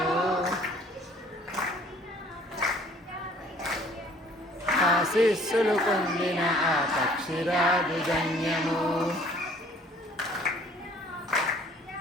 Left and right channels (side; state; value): both; normal; correlation 0.56